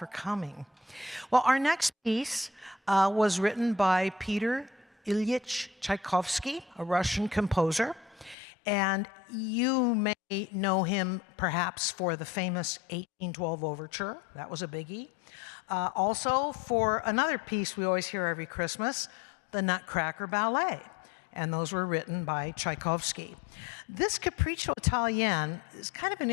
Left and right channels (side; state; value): right; drops out; at 8.3 s